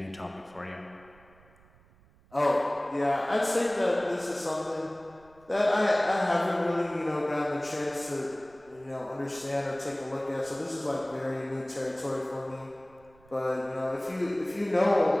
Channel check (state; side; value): noise; right; rumble, 28 dB below the sound